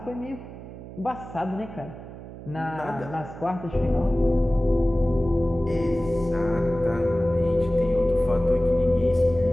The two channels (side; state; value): right; noise; hum, 14 dB below the sound